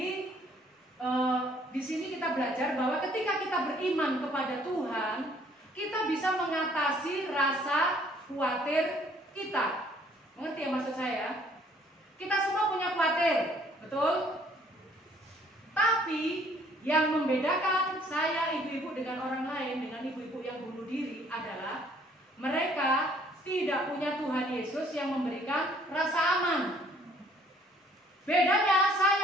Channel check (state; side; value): normal; both; correlation 0.61